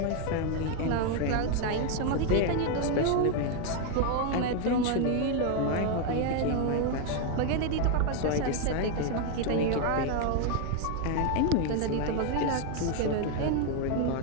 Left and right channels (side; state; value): both; different; correlation 0.01